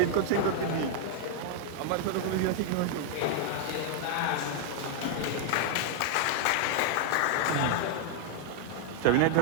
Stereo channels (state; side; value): different; both; correlation -0.01